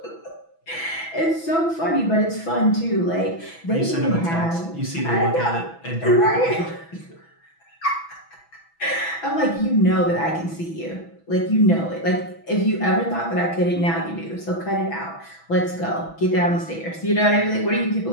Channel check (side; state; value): right; late; 6.1 ms